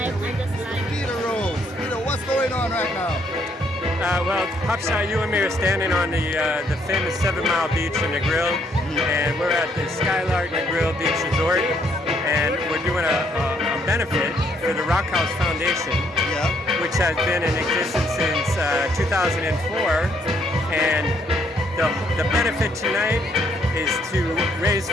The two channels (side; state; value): both; normal; correlation 0.69